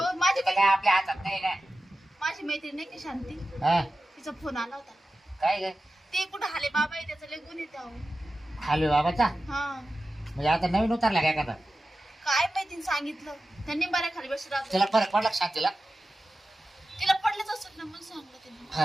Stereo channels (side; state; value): both; normal; correlation 0.94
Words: माझी आता काय आपल्या हातात नाही ना. माझी मैत्रीण नाही की शांती, हा तिचा फोन आला होता. काय ग ते कुठं हाले बाबा आहे, त्याचं लय गुण येते अहो. हालवे बाबाचा हा म्हणजे आता नवीन उतरला काय एखादा. काय माहिती सांगितलं त्यांनी बऱ्या खाली बसून राहतो. तिला फरक पडला का शांतीला. तिला पडलंच असत ना म्हणून सांगलं त्यांनी.